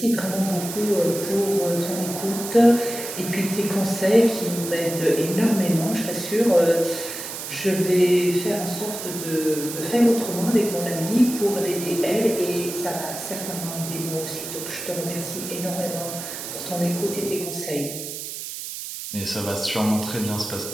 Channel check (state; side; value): noise; right; hiss, 8 dB below the sound